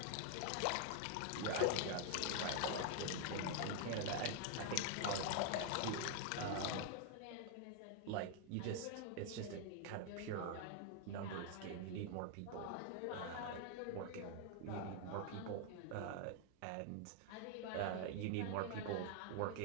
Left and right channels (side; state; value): both; different; correlation 0.00